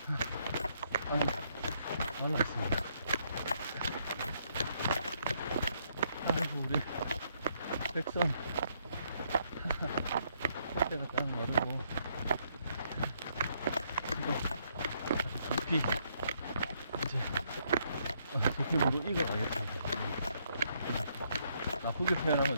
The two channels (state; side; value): inverted; both; correlation -0.73